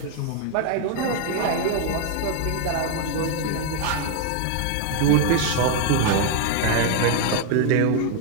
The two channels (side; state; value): both; different; correlation 0.00